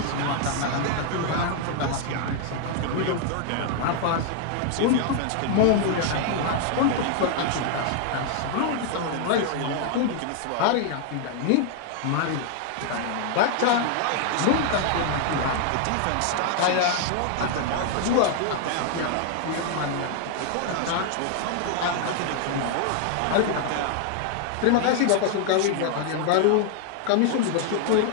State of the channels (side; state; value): both; different; correlation 0.00